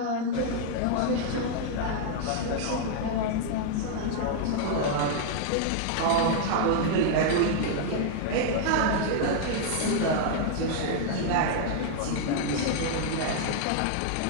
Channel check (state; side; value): different; both; correlation 0.00